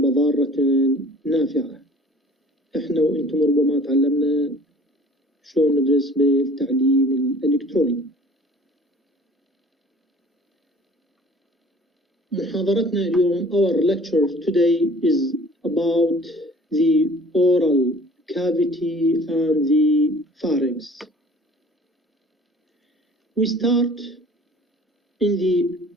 ضارة نافعة. احنا وانتم ربما تعلمنا شلون ندرس بالتعليم الإلكتروني. محاضرتنا اليوم, our lecture today is about the oral cavity and the pharynx. We start in the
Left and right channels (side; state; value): both; normal; correlation 0.49